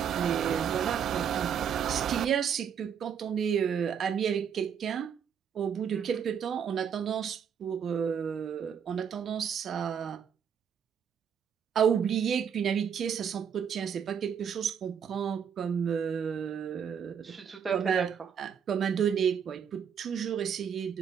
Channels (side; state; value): left; quieter; 7.8 dB